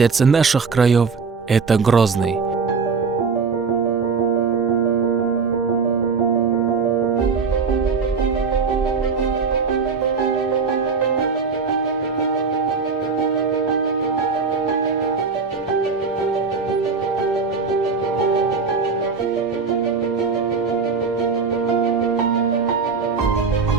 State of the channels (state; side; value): quieter; left; 5.0 dB